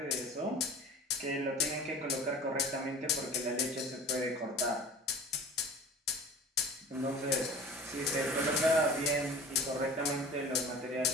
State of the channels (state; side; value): normal; both; correlation 0.41